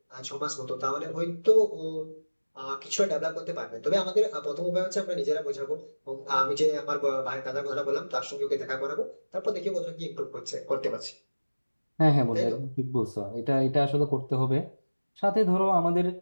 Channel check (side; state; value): both; inverted; correlation -1.00